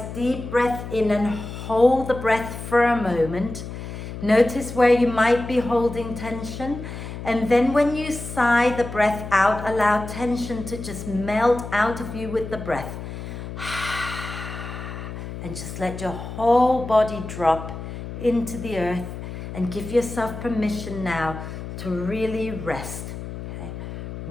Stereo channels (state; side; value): noise; left; hum, 9 dB below the sound